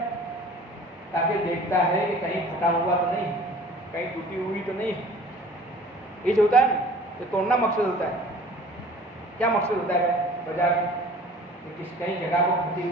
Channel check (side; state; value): both; normal; correlation 0.47